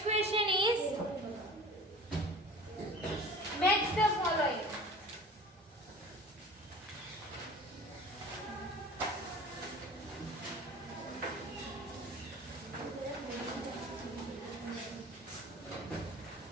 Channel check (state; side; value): normal; both; correlation 0.41